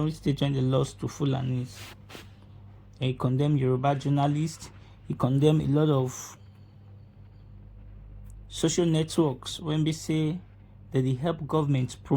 State when they lost to Fulanis. He condemned Yoruba journalists. He condemned a lot of social networks when they say that they help governments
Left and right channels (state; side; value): identical; both; correlation 1.00